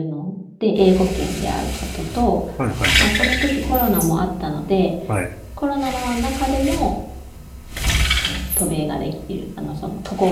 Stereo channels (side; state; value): both; identical; correlation 1.00